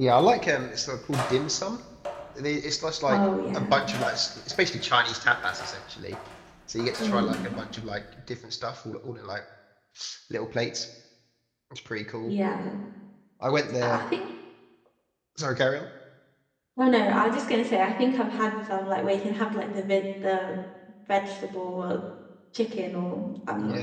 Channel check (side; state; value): both; identical; correlation 1.00